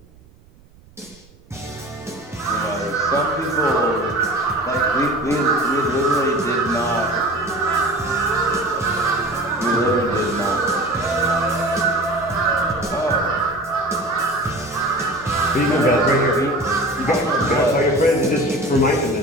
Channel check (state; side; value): noise; right; rumble, 27 dB below the sound